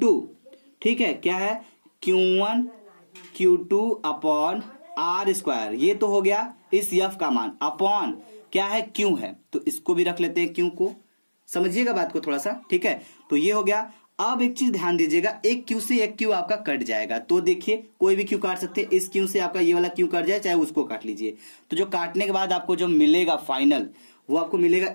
ठीक है, क्या है, Q1 Q2 upon r square, ये तो हो गया इस एफ का मान, अपॉन क्या है, क्यू है, तो इसको भी रख लेते हैं क्यू को, समझिएगा बात को थोड़ा सा, ठीक है। तो ये हो गया। अब एक चीज ध्यान दीजिएगा, एक क्यू से एक क्यू आपका कट जाएगा, तो देखिए कोई भी क्यू काट सकते हैं, इस क्यू से आपका ये वाला क्यू कट जाए, चाहे उसको काट लीजिए। तो जो काटने के बाद आपको जो मिलेगा फाइनल, वो आपको मिलेगा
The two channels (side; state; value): both; inverted; correlation -1.00